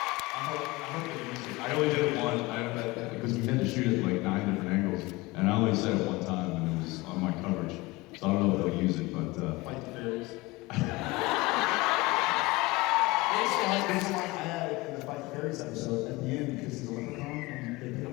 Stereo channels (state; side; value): quieter; right; 22.0 dB